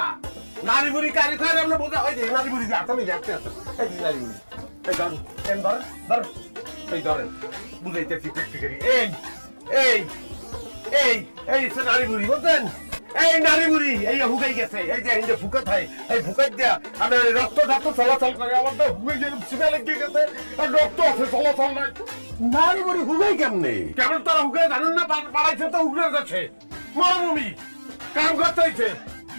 নারী বুড়ি কারি খাই আমরা বোঝা হয় যে নারী বুড়ি যে আমি দেখতে আছেন। এই যে নারী বুড়ি, এই ধরেন এন ধরেন ধরেন, এই ধরেন বুঝাইতেছি প্র্যাকটিক্যালি। এই এই এই এই সে নারী বুড়ি বলতেন, এই নারী বুড়ি এই হুকাই গেছে। এই যে এই যে ফুকা থাই, এই ফুকাই দিয়া আমি রক্ত ঢাক্ত চলাচল করে, আমার তো হুকাই গেলে সিমে লেগে গেছে, আর রক্ত আছে চলাচল নাই। নারী বুড়ি হুগাই কেমনে? কেমন তারা হুকাই জানেন না? পাড়াইছে তো উগড়ে যাচ্ছে মরুভূমি, কাম করতে হয়েছে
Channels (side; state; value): both; inverted; correlation -1.00